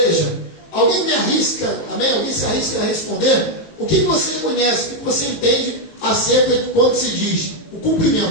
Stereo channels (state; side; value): late; right; 18 ms